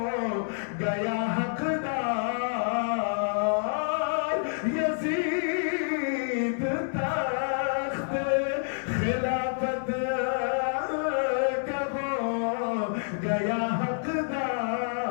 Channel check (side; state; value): right; silent; 59 dB below the other